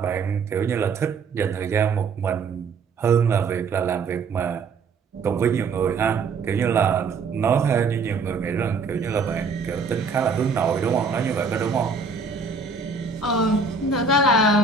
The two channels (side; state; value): left; quieter; 4.5 dB